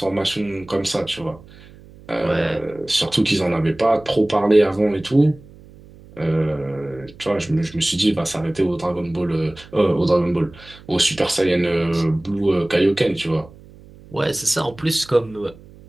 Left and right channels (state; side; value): noise; right; hum, 22 dB below the sound